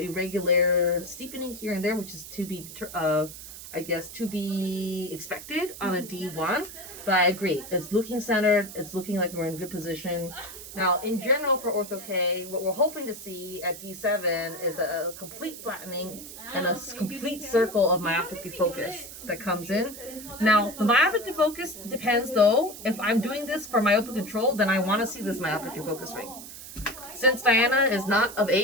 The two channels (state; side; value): noise; right; hiss, 13 dB below the sound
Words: steepening here and there, which is to be expected on a D1. But I agree. It's looking centered. It's looking like we're in good position. Now, in general for Ortho-K, what we're hoping to see at D7 is a complete flattening and a complete circle of myopic defocus that comes in. Now, the myopic defocus depends, though. If I'm doing this for myopic control, then I want to see this myopic defocus ring. Since Diana is not of